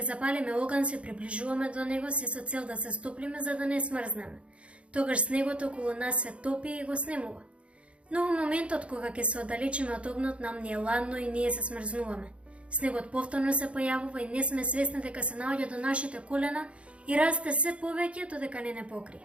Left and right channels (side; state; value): left; late; 0.061 ms